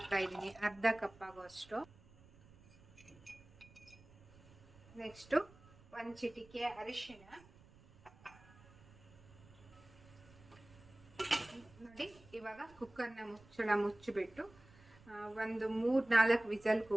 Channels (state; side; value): noise; right; rumble, 24 dB below the sound